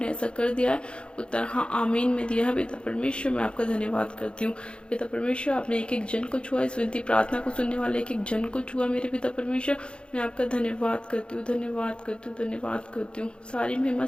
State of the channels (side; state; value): right; late; 0.055 ms